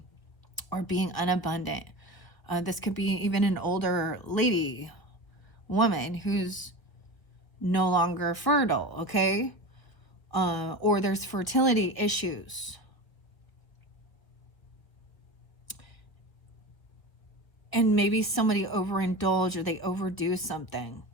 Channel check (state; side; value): late; right; 1.3 ms